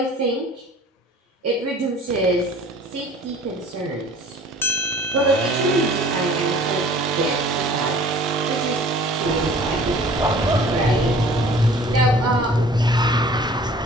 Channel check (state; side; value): normal; both; correlation 0.49